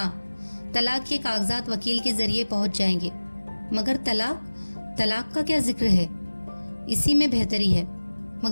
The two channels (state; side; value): inverted; both; correlation -1.00